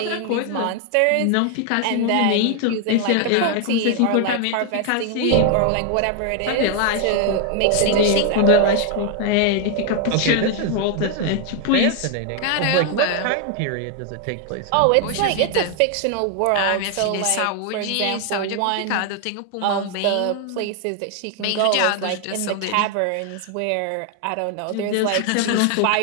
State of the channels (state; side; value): different; both; correlation 0.00